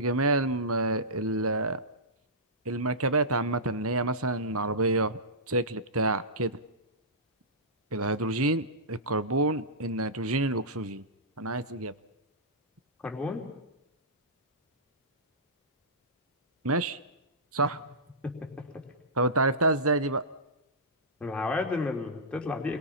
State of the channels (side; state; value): both; normal; correlation -0.17